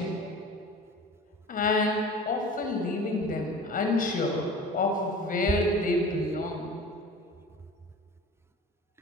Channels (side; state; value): both; normal; correlation 0.39